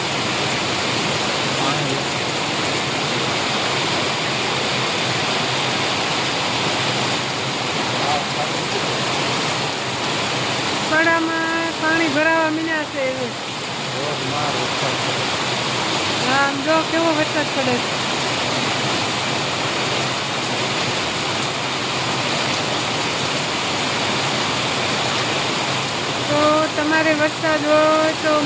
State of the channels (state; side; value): identical; both; correlation 1.00